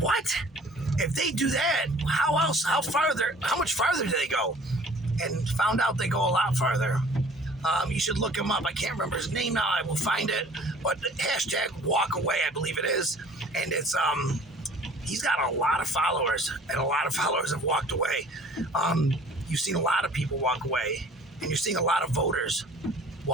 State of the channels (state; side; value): normal; both; correlation 0.49